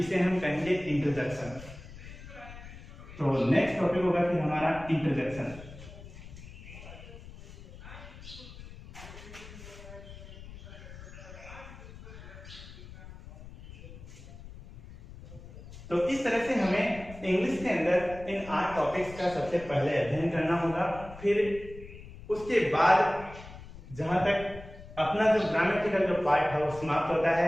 हम कहेंगे इंटरजेक्शन। तो नेक्स्ट टॉपिक होगा फिर हमारा इंटरजेक्शन। तो इस तरह से हमें इंग्लिश के अंदर इन 8 टॉपिक्स का सबसे पहले अध्ययन करना होगा। फिर उसके बाद जहां तक अपना जो ग्रामेटिकल जो पार्ट है वो समाप्त होता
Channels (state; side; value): noise; left; rumble, 15 dB below the sound